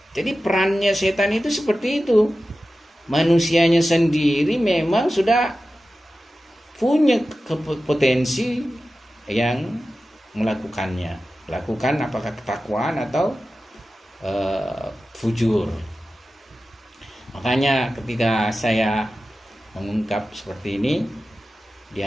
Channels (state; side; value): normal; both; correlation 0.94